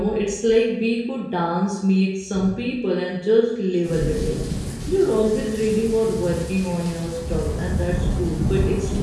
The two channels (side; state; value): both; identical; correlation 1.00